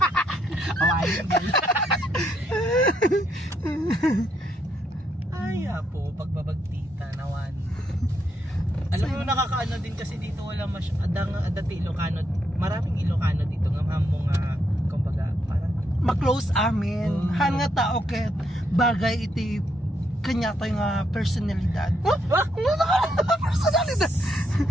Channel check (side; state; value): both; normal; correlation 0.76